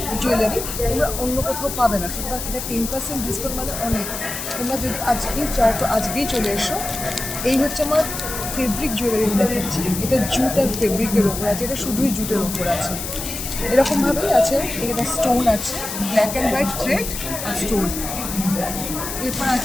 জুয়েলারি তোমরা অন্য কোথাও পাবে না, সুতরাং এটা 10% ডিসকাউন্ট মানে অনেক। তোমরা যদি আজকেই চাও তো আজকেই চলে এসো। এই হচ্ছে আমার ফেব্রিক জুয়েলারি দেখাচ্ছি, এটা জুট আর ফেব্রিকের ওপর আছে, এটা শুধুই জুটের ওপর আছে। এরকমভাবেই আছে, এটা স্টোন আছে, ব্ল্যাক অ্যান্ড হোয়াইট থ্রেড আর স্টোন। এরপর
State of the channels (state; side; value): noise; left; hiss, 6 dB below the sound